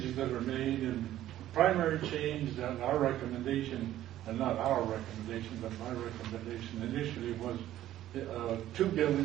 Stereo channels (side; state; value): left; quieter; 13.2 dB